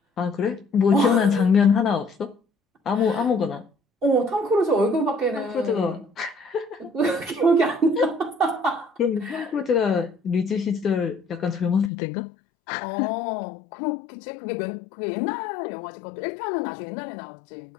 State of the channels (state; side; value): drops out; right; at 11.9 s